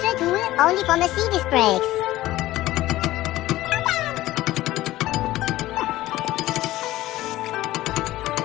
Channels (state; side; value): quieter; right; 16.2 dB